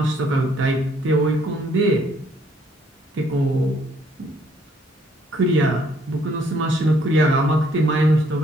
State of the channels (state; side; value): normal; both; correlation 0.66